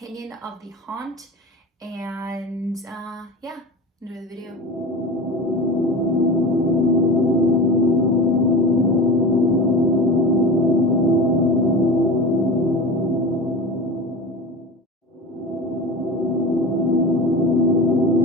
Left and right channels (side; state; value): both; normal; correlation 0.30